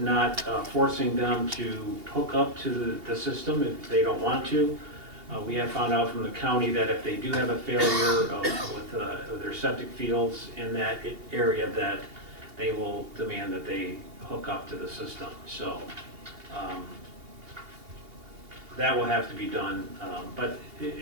forcing them to hook up to the system if they don't want to. We have found out from the county that if they do have a failure with their septic fields in that area, that they will demand that they hook up to the system. So that will have to be done. But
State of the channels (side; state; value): left; late; 2.8 ms